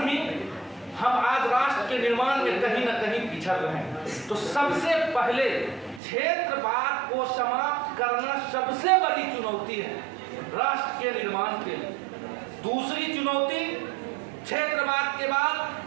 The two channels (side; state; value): left; drops out; at 6.0 s